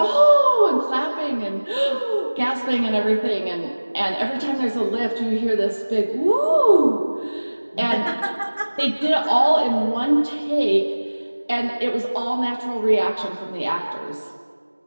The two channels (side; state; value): both; inverted; correlation -1.00